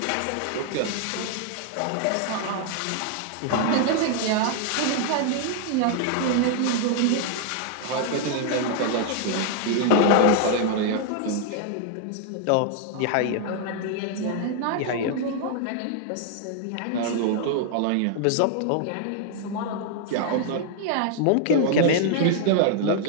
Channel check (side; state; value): both; different; correlation 0.00